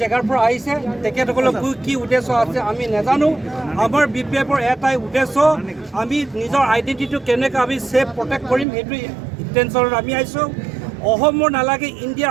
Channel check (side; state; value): left; drops out; at 8.7 s